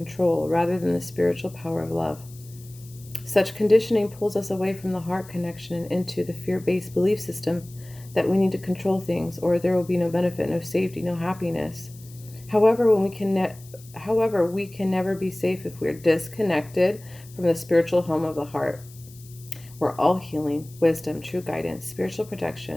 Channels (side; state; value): left; noise; hiss, 22 dB below the sound